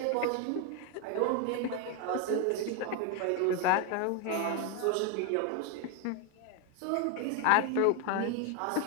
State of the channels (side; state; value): both; different; correlation 0.01